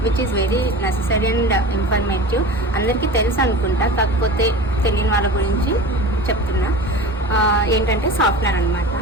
which is very necessary and informative. అందరికీ తెలుసు అనుకుంటా, కాకపోతే తెలియని వాళ్ళ గురించి చెప్తున్నా. ఏంటంటే సాఫ్ట్వేర్ అనమాట.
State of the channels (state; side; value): normal; both; correlation 0.34